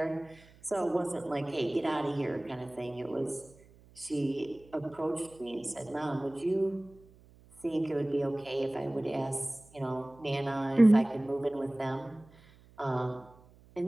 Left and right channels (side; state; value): right; noise; hum, 26 dB below the sound